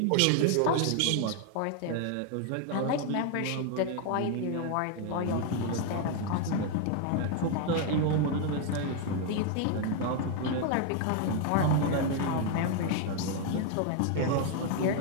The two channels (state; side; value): different; both; correlation 0.00